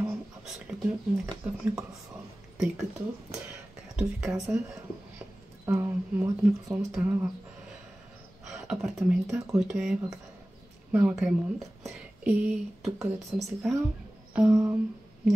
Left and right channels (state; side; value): normal; both; correlation 0.97